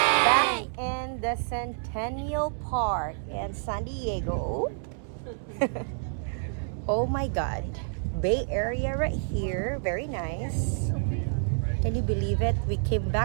Back in the Centennial Park in San Diego. Oh my God. Bay Area right here. Very nice. Can you believe it? We came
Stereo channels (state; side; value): silent; left; 59 dB below the other